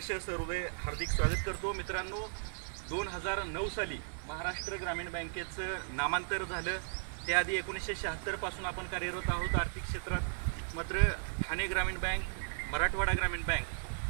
सहृदय हार्दिक स्वागत करतो। मित्रांनो, 2009 साली महाराष्ट्र ग्रामीण बँकेचं नामांतर झालं। त्याआधी 1976 पासून आपण कार्यरत आहोत आर्थिक क्षेत्रात। मात्र ठाणे ग्रामीण बँक, मराठवाडा ग्रामीण बँक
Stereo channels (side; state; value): left; silent; 54 dB below the other